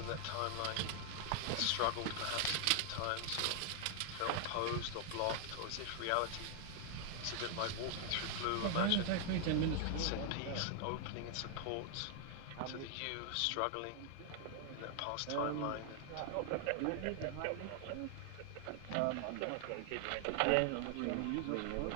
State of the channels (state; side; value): different; both; correlation 0.00